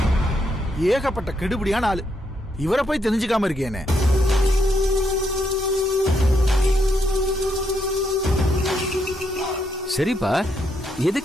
ஏகப்பட்ட கெடுபடியான ஆளு. இவரை போய் தெரிஞ்சுக்காம இருக்கேனே. சரிப்பா,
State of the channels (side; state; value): both; normal; correlation 0.77